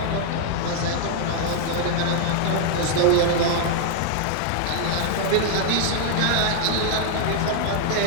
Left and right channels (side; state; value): both; different; correlation 0.00